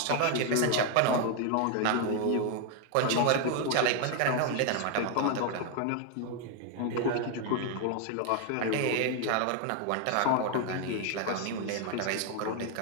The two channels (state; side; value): different; both; correlation 0.00